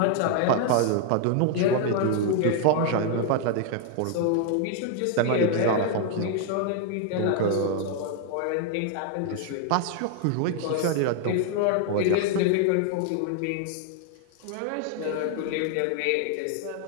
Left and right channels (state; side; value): different; both; correlation 0.00